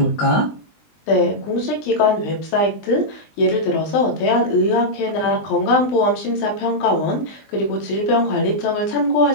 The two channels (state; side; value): late; right; 20 ms